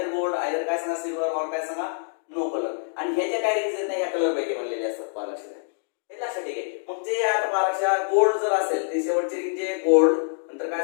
gold either काय सांगा सिल्वर और काय सांगा नो कलर. आणि हे जे काय रिंग्स आहेत ना या कलर पैकी बनलेले असतात. पहा लक्षात घ्या. हे लक्षात ठीक आहे. मग जे आता पहा लक्षात गोल्ड जर असेल ती शेवटची रिंग जे गोल्ड नंतर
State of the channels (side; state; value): right; silent; digital silence